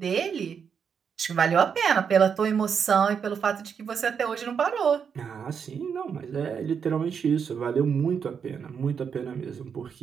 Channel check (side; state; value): left; quieter; 6.9 dB